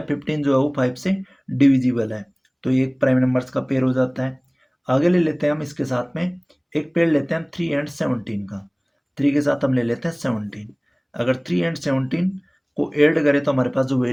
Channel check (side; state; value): both; identical; correlation 1.00